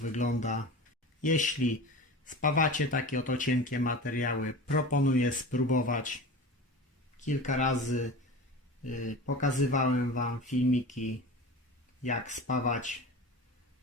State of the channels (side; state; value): both; normal; correlation 0.33